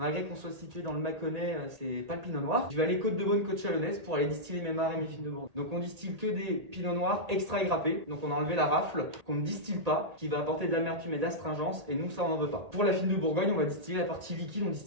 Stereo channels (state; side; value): late; left; 1.8 ms